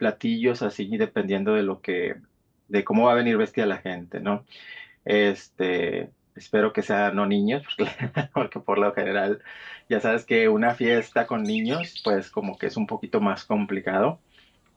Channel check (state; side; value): identical; both; correlation 1.00